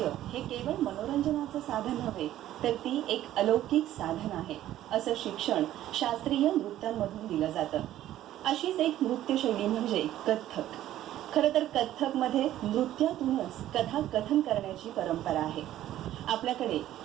हे केवळ मनोरंजनाचं साधन नव्हे, तर ती एक अलौकिक साधन आहे असं शिक्षण शास्त्रीय नृत्यांमधून दिलं जातं. अशीच एक नृत्यशैली म्हणजे कथ्थक. खरं तर कथ्थकमध्ये नृत्यातूनच कथाकथन करण्याची परंपरा आहे. आपल्याकडे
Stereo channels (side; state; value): left; quieter; 13.2 dB